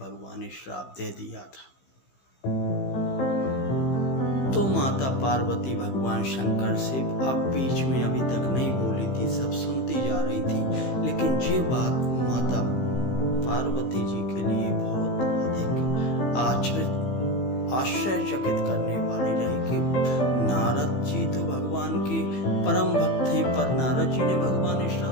श्राप दे दिया था। तो माता पार्वती भगवान शंकर से अब बीच में अभी तक नहीं बोली थी, सब सुनती जा रही थी, लेकिन ये बात माता पार्वती जी के लिए बहुत अधिक आश्चर्यचकित करने वाली रही कि नारद जी तो भगवान के परम भक्त हैं, पर नारद जी ने भगवान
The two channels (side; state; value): right; late; 15 ms